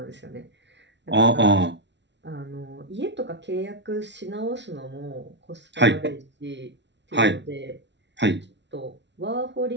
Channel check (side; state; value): left; late; 0.51 ms